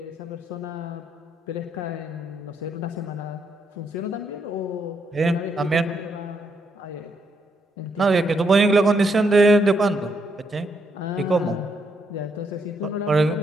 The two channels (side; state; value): both; normal; correlation 0.76